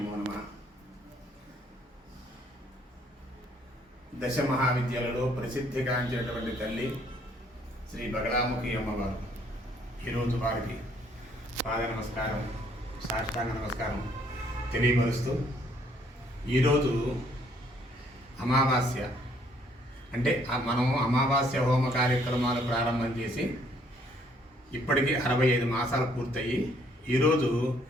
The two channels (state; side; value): normal; both; correlation 0.65